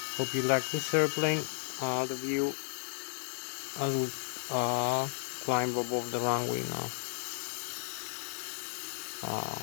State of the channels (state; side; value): silent; right; digital silence